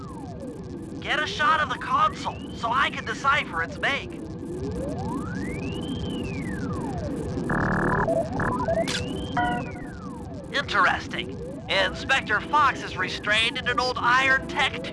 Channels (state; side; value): identical; both; correlation 1.00